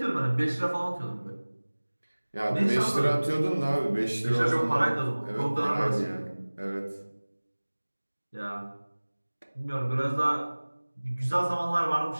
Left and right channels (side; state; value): both; inverted; correlation -1.00